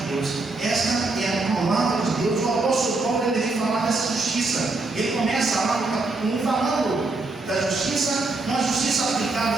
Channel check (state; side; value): quieter; left; 3.3 dB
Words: Deus, essa é a palavra de Deus. O apóstolo Paulo ele vem falar dessa justiça. Ele começa lá no capítulo 1 falando da justiça, uma justiça